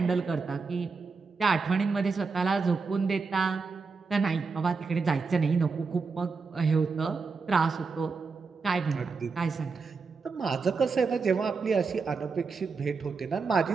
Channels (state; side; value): quieter; left; 4.7 dB